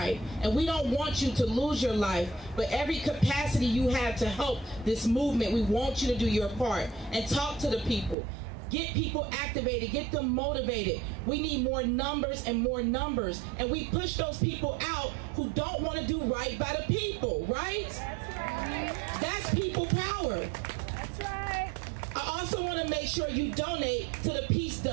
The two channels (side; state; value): left; drops out; at 8.2 s